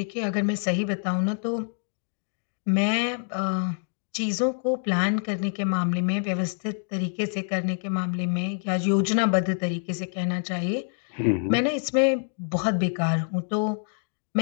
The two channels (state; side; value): silent; right; 61 dB below the other